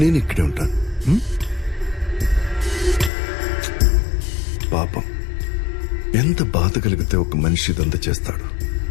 నేను ఇక్కడే ఉంటాను. పాపం, ఎంత బాధ కలిగితే ఒక మనిషి ఇదంతా చేస్తాడు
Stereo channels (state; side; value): drops out; right; at 3.1 s